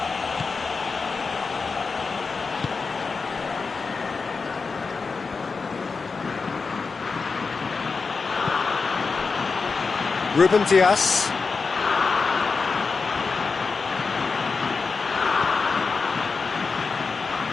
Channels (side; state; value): right; quieter; 4.6 dB